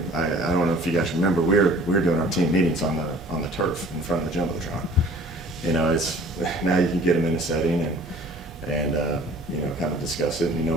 don't know if you guys remember, we were doing our team meetings on the turf in front of the jumbotron. It's now you can get them in a setting and kind of discuss it.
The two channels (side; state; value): both; normal; correlation 0.49